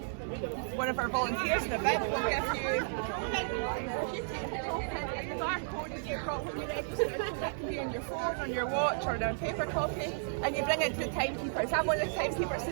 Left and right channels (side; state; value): left; silent; 56 dB below the other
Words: one of our volunteers in the event, will give you, if you take the token and the barcode that you've got when you register, that can be on your phone, on your watch, or on a paper copy, and you bring it to the timekeepers. I'm one of the timekeepers